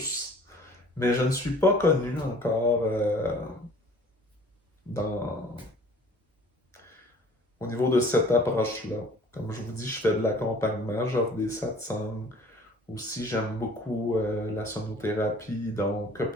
Mais je ne suis pas connu encore dans, au niveau de cette approche-là. Comme je vous dis, je fais de l'accompagnement, j'offre des satsangs. Aussi, j'aime beaucoup la sonothérapie, donc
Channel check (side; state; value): both; normal; correlation 0.50